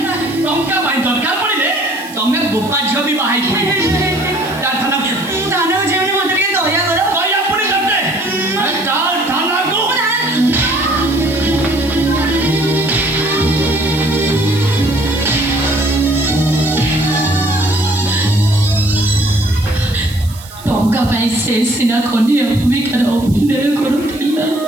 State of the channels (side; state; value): right; noise; hiss, 19 dB below the sound